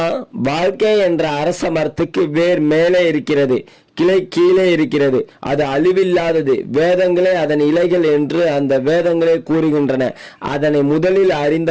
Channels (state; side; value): identical; both; correlation 1.00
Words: வாழ்க்கை என்ற அரச மரத்துக்கு வேர் மேலே இருக்கிறது, கிளை கீழே இருக்கிறது. அது அழிவில்லாதது. வேதங்களே அதன் இலைகள் என்று அந்த வேதங்களே கூறுகின்றன. அதனை முதலில்